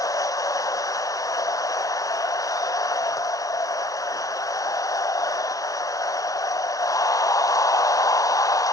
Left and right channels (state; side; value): late; right; 0.17 ms